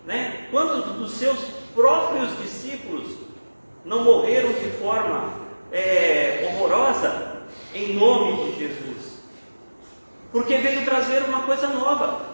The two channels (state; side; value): inverted; both; correlation -1.00